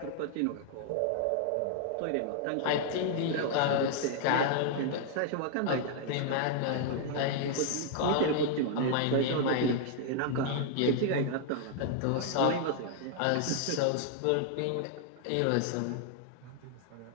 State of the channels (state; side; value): different; both; correlation 0.00